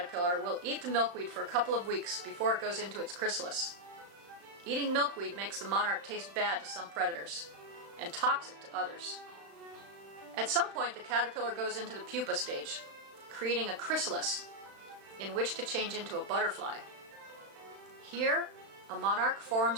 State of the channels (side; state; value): left; late; 35 ms